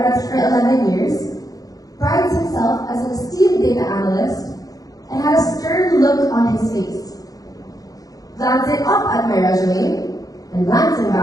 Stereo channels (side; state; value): right; late; 0.18 ms